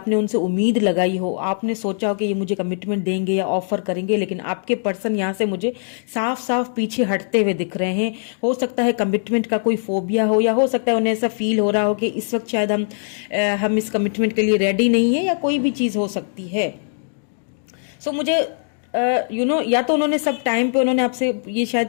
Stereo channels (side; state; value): right; silent; digital silence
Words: उनसे उम्मीद लगाई हो, आपने सोचा हो कि ये मुझे कमिटमेंट देंगे या ऑफर करेंगे, लेकिन आपके पर्सन यहाँ से मुझे साफ साफ पीछे हटते हुए दिख रहे हैं। हो सकता है कमिटमेंट का कोई फोबिया हो, या हो सकता है उन्हें ऐसा फील हो रहा हो कि इस वक्त शायद हम इस कमिटमेंट के लिए रेडी नहीं है, या कोई भी चीज़ हो सकती है। सो मुझे या तो उन्होंने सब टाइम पे उन्होंने आपसे ये